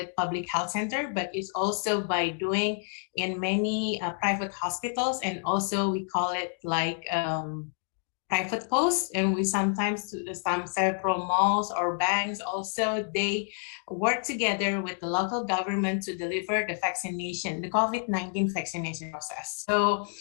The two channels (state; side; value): silent; right; 59 dB below the other